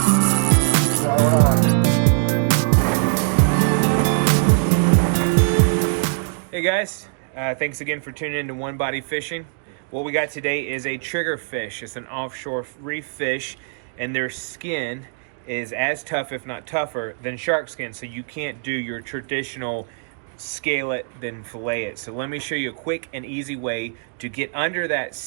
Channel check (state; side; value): silent; left; digital silence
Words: Hey guys, thanks again for tuning in to One Body Fishing. What we got today is a triggerfish. It's an offshore reef fish, and their skin is as tough, if not tougher, than shark skin, so you can't do your traditional scale it, then fillet it. So let me show you a quick and easy way to get under that